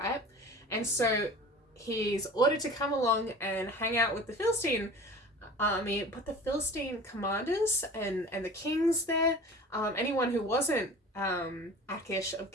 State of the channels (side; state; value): both; normal; correlation 0.39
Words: And so he's ordered to come along and hang out with the Philistine army, but the Philistine commanders and the kings there, anyone who wasn't Achish of